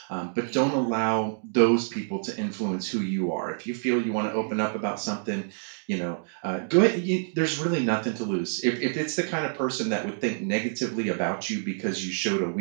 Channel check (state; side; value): silent; left; digital silence